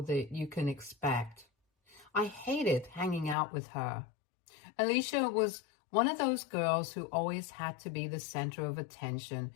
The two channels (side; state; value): right; drops out; at 3.4 s